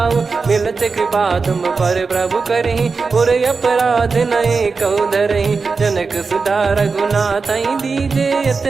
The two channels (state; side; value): quieter; left; 4.6 dB